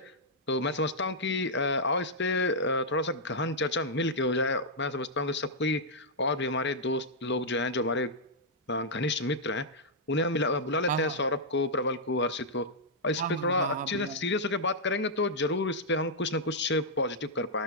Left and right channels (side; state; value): both; normal; correlation -0.07